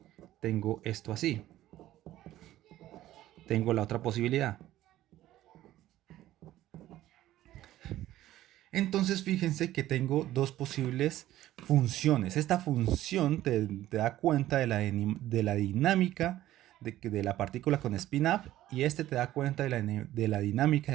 tengo esto así. Tengo la otra posibilidad. Entonces fíjense que tengo dos posibles funciones. Esta función te da cuenta de la dinámica de la partícula con spin up y este te da cuenta de la dinámica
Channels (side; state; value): left; quieter; 14.3 dB